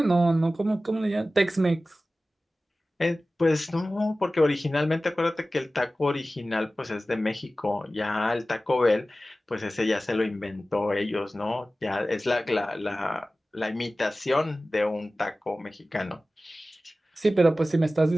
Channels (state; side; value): normal; both; correlation 0.96